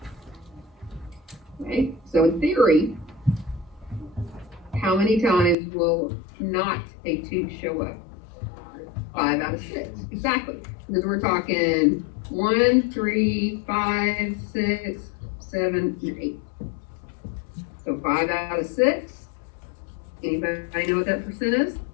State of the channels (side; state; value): right; drops out; at 5.6 s